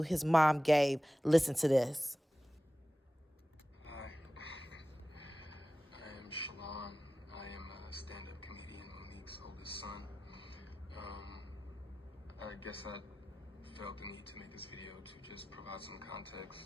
mom gave. Listen to this. Hi, I am Shalon. I am a stand-up comedian, Monique's oldest son. I guess I felt the need to make this video to just provide some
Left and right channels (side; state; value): both; normal; correlation 0.95